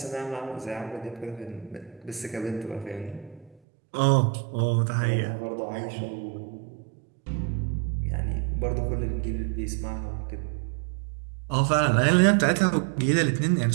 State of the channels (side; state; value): left; drops out; at 3.6 s